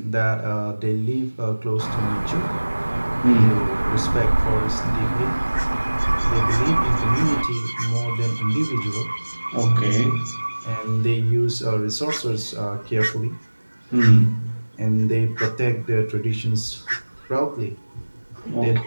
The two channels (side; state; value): both; inverted; correlation -1.00